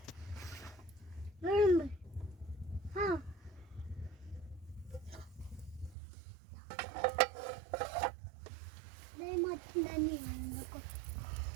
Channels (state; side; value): drops out; left; at 6.0 s